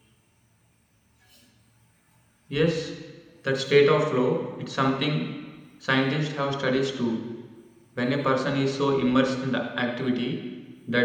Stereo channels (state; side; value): identical; both; correlation 1.00